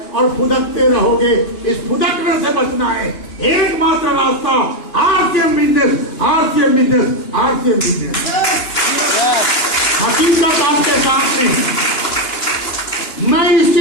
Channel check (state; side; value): late; right; 2.9 ms